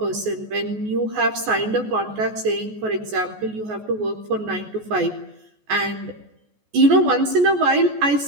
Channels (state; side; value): late; left; 14 ms